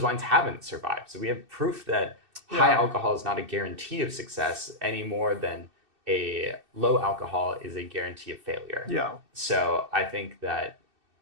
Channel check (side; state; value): left; late; 2.6 ms